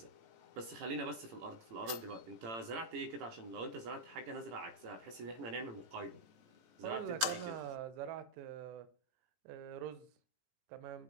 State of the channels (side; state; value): left; late; 17 ms